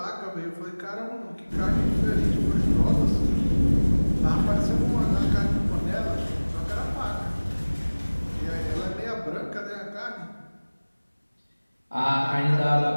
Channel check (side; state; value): both; inverted; correlation -1.00